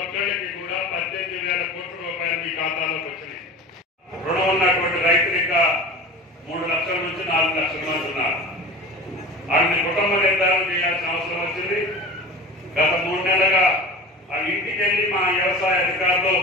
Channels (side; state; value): both; normal; correlation 0.34